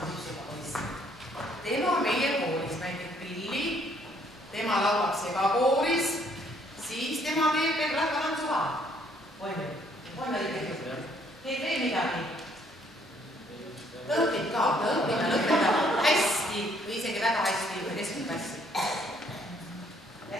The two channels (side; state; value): both; normal; correlation 0.66